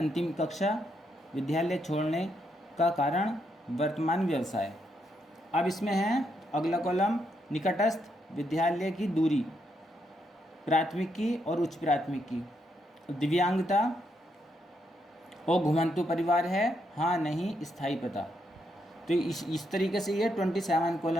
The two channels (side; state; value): both; normal; correlation 0.78